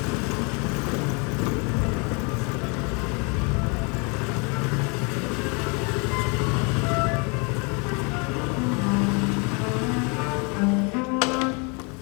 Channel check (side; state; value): right; quieter; 32.4 dB